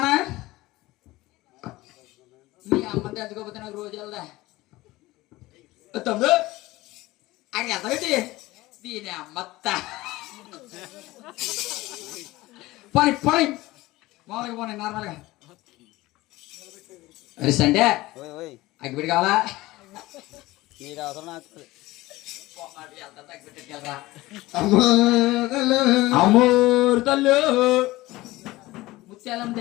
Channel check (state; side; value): quieter; right; 18.9 dB